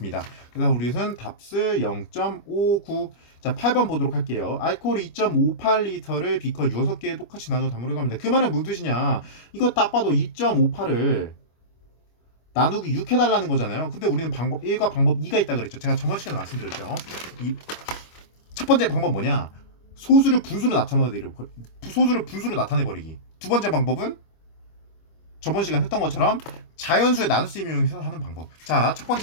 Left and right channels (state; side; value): late; right; 25 ms